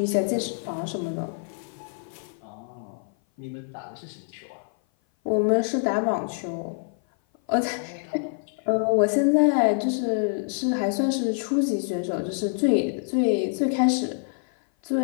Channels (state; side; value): silent; right; 56 dB below the other